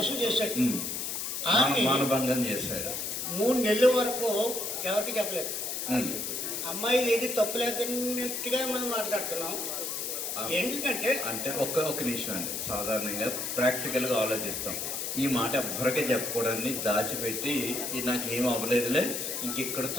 చేశాడు. ఆమె మానభంగం చేశాడు. 3 నెలల వరకు ఎవరికి చెప్పలేదు. అమ్మాయి ఏది తప్పులేదన్నట్టుగా మనం మాట్లాడుతున్నాం. ఎందుకంటే అంటే ఒక్క నిమిషం అండి, సాధారణంగా ప్రాక్టికల్గా ఆలోచిస్తాం. ఈ మాట ఎవ్వరికే చెప్పకూడదని దాచిపెట్టి నాకేం అవ్వలేదులే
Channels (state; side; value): noise; left; hiss, 3 dB below the sound